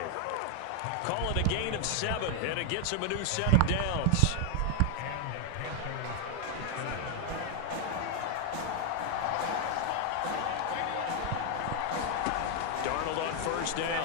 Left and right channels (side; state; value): both; different; correlation 0.01